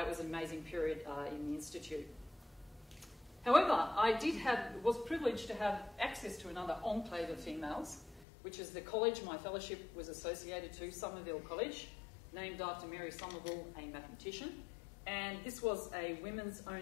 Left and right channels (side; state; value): right; drops out; at 8.2 s